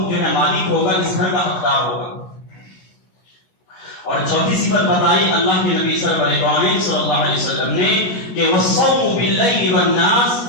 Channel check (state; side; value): late; right; 16 ms